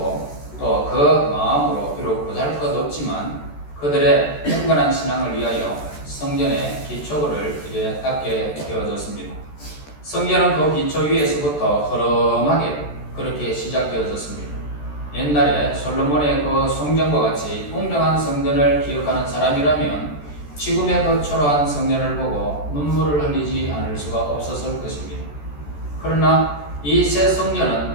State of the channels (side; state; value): right; late; 14 ms